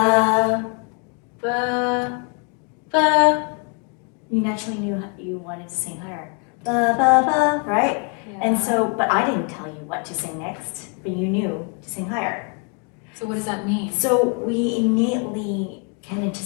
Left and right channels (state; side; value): quieter; right; 37.4 dB